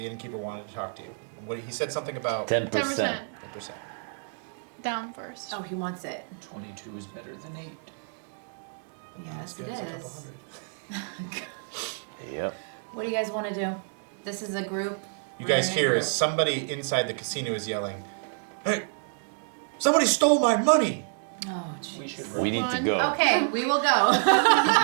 innkeeper wanted to talk to you. He said something about 10%. 10%. Down first. Oh, he wants it. 22 is better than 8. Yes, it It's a couple is. hundred. Yep. What do you guys want to do? This is a group. You We're guys in a hear group. as somebody inside the casino is yelling, "Hey, somebody stole my money!" Oh, We jeez. should We need to go. Okay, we will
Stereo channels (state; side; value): silent; left; 59 dB below the other